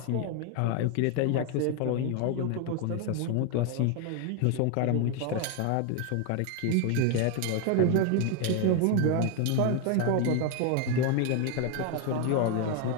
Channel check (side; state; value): both; different; correlation 0.01